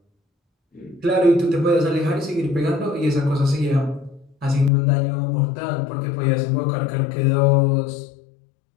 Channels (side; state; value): right; drops out; at 4.7 s